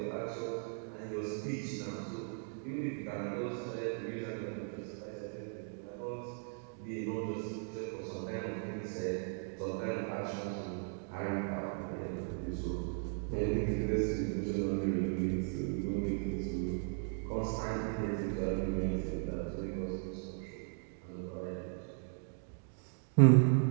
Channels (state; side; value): silent; left; 53 dB below the other